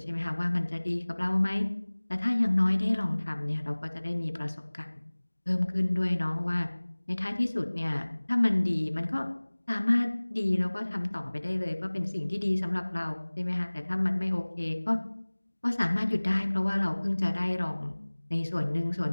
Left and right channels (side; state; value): both; inverted; correlation -1.00